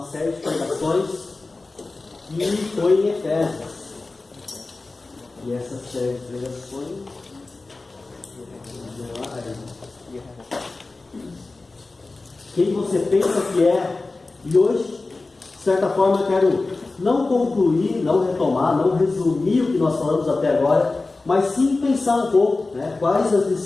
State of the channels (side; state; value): right; quieter; 3.4 dB